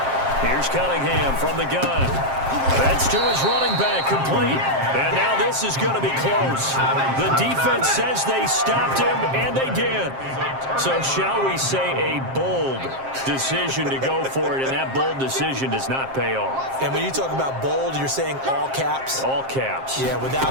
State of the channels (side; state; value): left; late; 7.5 ms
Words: Here's Cunningham from the gun. That's to his running back, complete. And now this is going to be close. The defense says they stopped him, and they did. So shall we say a bold decision to go for it, and that bold decision does not pay off. And when you talk about bold, you're saying all caps? All caps. Yeah,